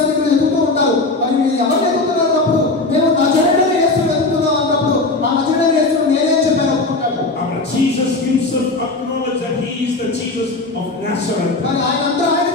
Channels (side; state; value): right; quieter; 3.2 dB